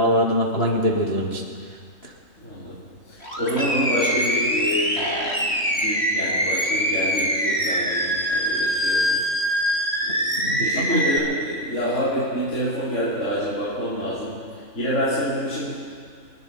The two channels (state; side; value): late; right; 3.1 ms